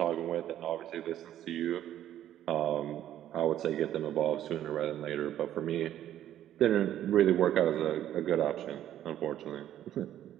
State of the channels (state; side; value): quieter; left; 11.7 dB